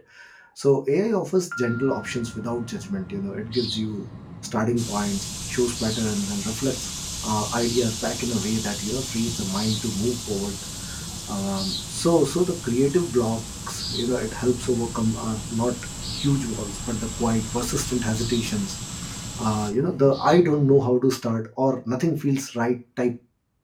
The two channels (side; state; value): both; identical; correlation 1.00